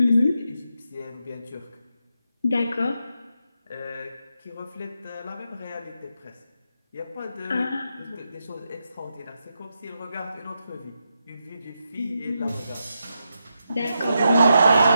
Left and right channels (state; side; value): inverted; both; correlation -0.84